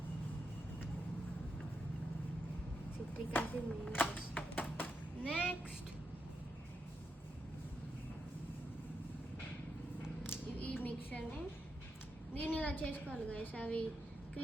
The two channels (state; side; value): normal; both; correlation 0.84